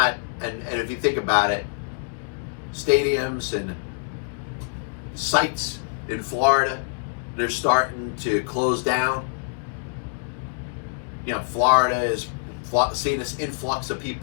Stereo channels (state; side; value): silent; right; digital silence